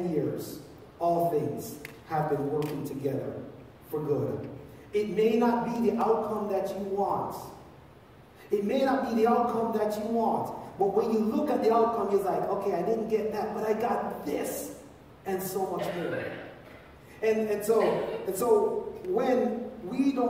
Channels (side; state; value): both; identical; correlation 1.00